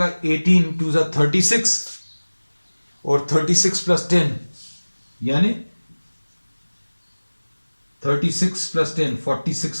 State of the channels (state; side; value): inverted; both; correlation -1.00